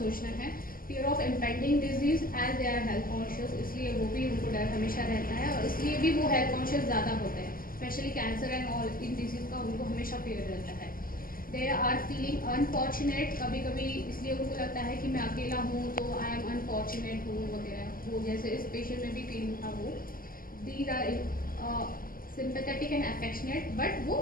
है। Fear of impending disease as they are health conscious, इसलिए वो भी उनको डर हमेशा रहता है और इसलिए भी वो हेल्थ कॉन्शियस ज़्यादा होते हैं, specially cancer and all in disease का उनको हमेशा फियर रहता है। दे आर फीलिंग अनफॉर्चुनेट, कभी कभी इसलिए उनको लगता है कि मैं अकेला हूँ तो आई एम अनफॉर्चुनेट हूँ वगैरह, वो जैसे इस पेशेंट में भी फीलिंग था वो। These are sympathetic and affectionate, but वो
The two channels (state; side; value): late; right; 0.42 ms